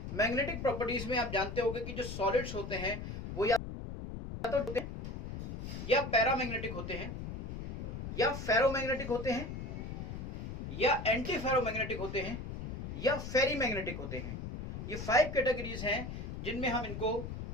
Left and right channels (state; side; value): noise; left; rumble, 7 dB below the sound